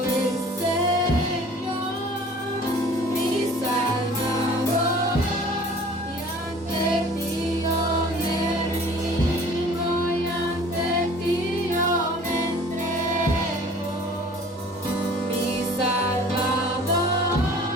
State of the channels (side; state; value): both; normal; correlation 0.48